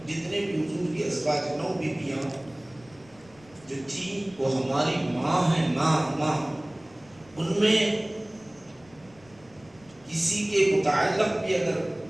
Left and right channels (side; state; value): left; noise; rumble, 27 dB below the sound